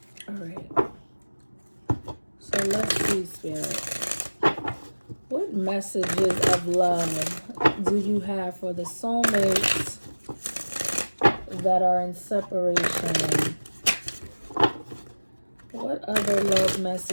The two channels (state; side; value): inverted; both; correlation -1.00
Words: All right. So let's see, Spirit. What messages of love do you have for the soulmates that are in separation? What other love